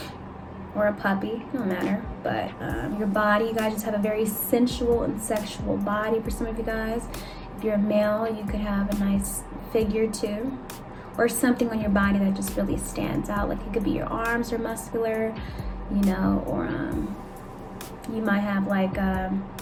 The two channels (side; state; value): both; identical; correlation 1.00